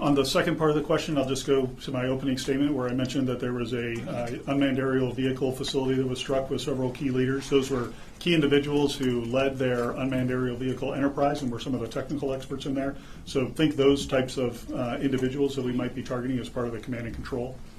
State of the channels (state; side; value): identical; both; correlation 1.00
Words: the second part of the question, I'll just go to my opening statement where I mentioned that there was a unmanned aerial vehicle facility that was struck with several key leaders. Those were key individuals who led their unmanned aerial vehicle enterprise and were some of the technical experts in there. So think those types of individuals that we might be targeting as part of the command and control.